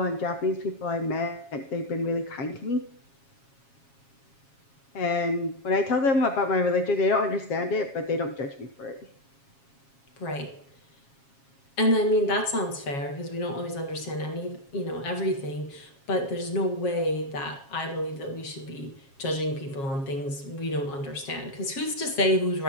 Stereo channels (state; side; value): late; right; 7.3 ms